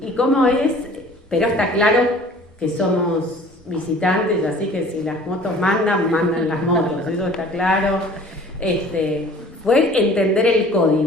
cómo es, pero está claro que somos visitantes, así que si las motos mandan las motos, eso está claro. Fue entender el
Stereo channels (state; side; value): normal; both; correlation 0.49